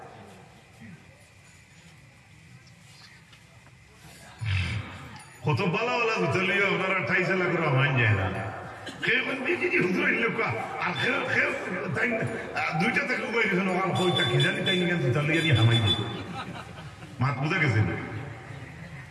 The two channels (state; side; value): identical; both; correlation 1.00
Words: কত বালা বালা বুঝলিও আপনারা ঠাইছে লাগলো মান যায় না কেমন বিজি হুজুর লোক আর খেল তাই দুইটা থেকে উবাই দিছেন আর কইটা কি জানি তাই নিয়ে বুঝলিও নি হামাই দিই মাত বুঝা গেছে